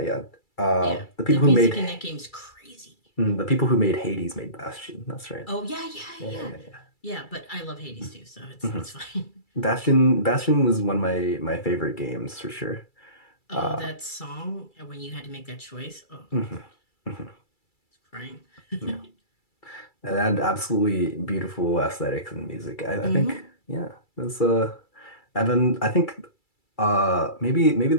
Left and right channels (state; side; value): late; right; 2.3 ms